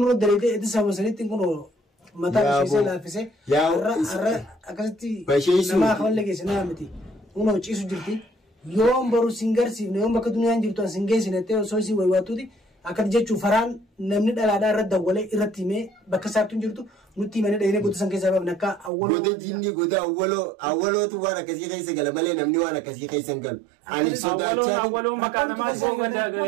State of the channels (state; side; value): drops out; left; at 18.9 s